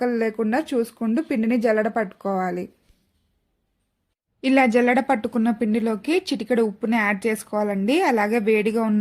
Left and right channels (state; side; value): identical; both; correlation 1.00